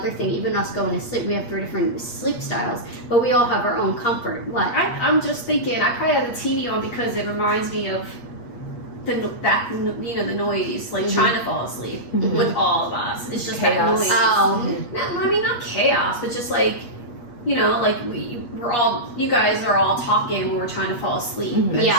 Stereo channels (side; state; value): right; late; 8.4 ms